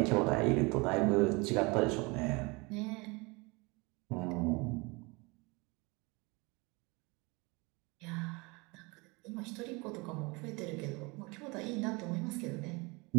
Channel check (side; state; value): left; quieter; 26.9 dB